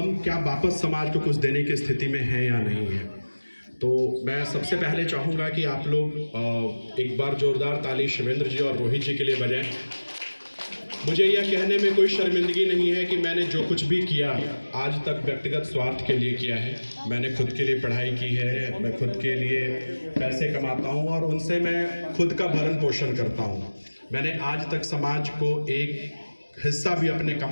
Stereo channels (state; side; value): inverted; both; correlation -1.00